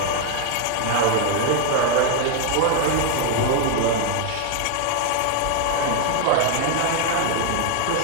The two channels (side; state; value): both; different; correlation 0.01